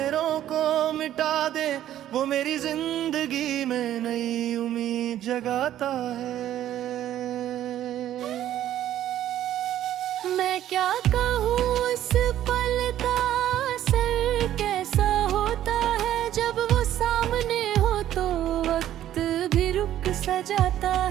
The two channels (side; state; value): left; quieter; 12.1 dB